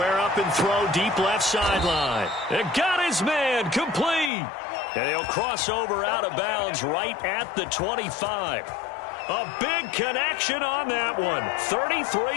up and throw deep left sideline. And got his man complete. And he'll cross over out of bounds right at the 25. A big connection on that one.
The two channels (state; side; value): drops out; right; at 4.3 s